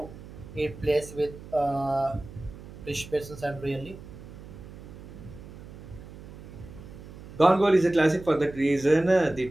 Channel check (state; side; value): noise; right; hum, 15 dB below the sound